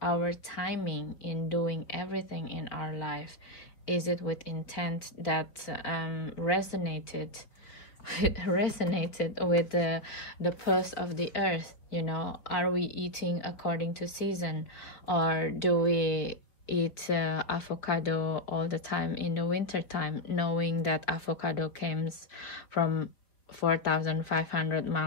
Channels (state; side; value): late; right; 4.8 ms